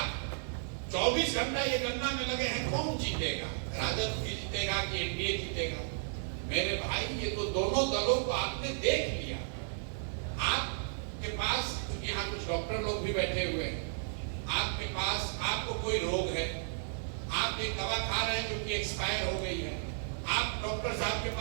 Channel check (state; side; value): silent; left; digital silence